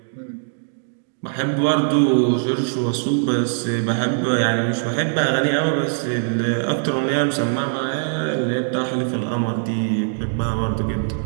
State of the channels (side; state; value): left; silent; digital silence